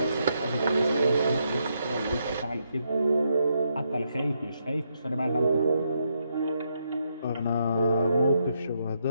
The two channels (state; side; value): inverted; both; correlation -0.79